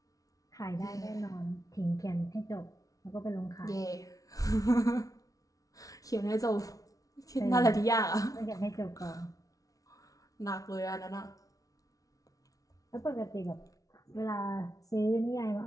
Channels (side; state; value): right; late; 0.17 ms